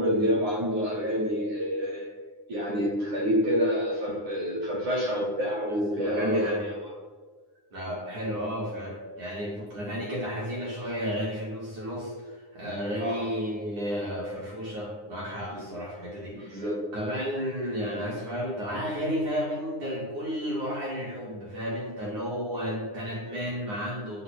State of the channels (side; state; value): left; late; 9.7 ms